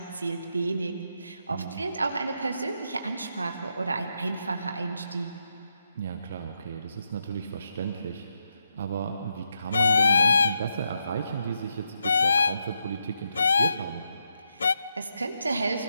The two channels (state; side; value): inverted; both; correlation -0.82